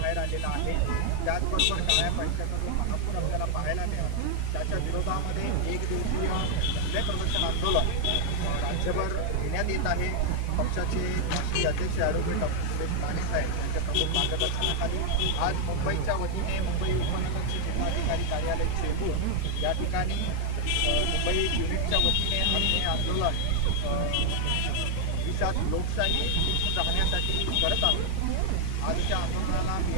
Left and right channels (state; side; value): different; both; correlation 0.00